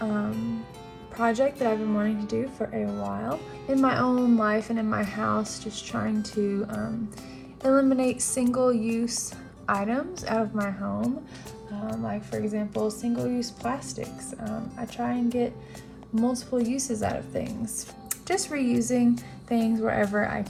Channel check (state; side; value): identical; both; correlation 1.00